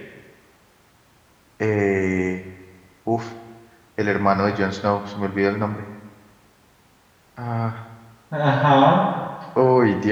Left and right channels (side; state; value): both; identical; correlation 1.00